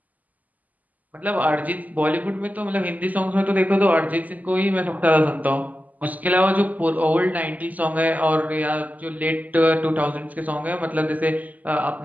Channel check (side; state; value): left; late; 0.078 ms